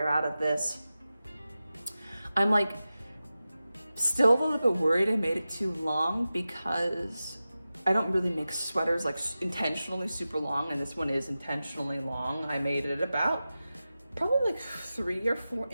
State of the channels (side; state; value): both; inverted; correlation -0.94